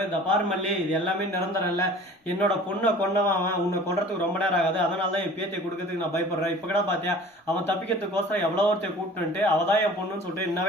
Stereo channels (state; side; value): normal; both; correlation 0.45